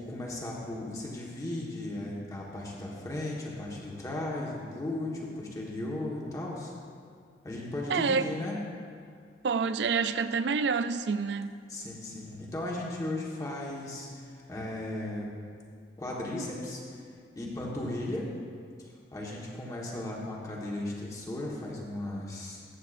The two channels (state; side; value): normal; both; correlation 0.41